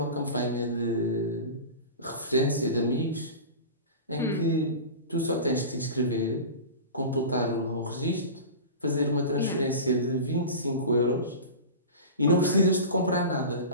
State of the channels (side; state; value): both; inverted; correlation -0.31